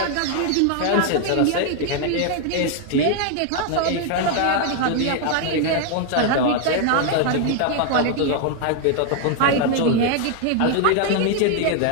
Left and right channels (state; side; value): different; both; correlation 0.00